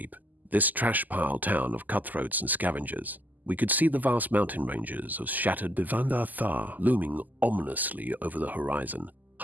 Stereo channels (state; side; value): late; left; 0.083 ms